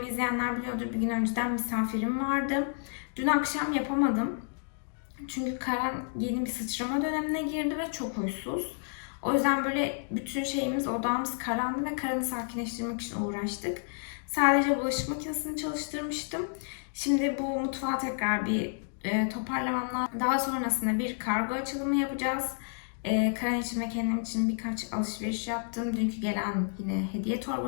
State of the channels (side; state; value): right; silent; digital silence